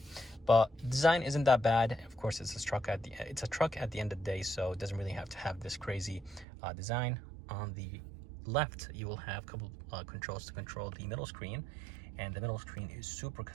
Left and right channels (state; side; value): drops out; left; at 6.5 s